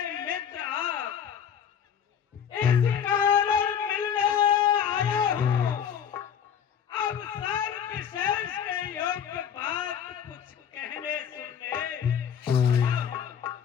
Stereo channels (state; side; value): quieter; right; 8.3 dB